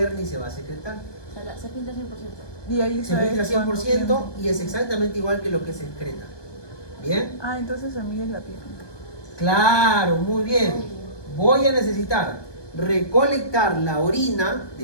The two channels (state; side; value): late; right; 1.2 ms